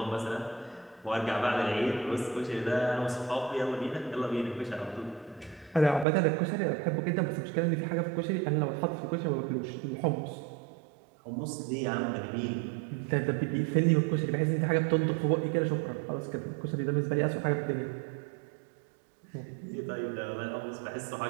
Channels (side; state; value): left; drops out; at 6.1 s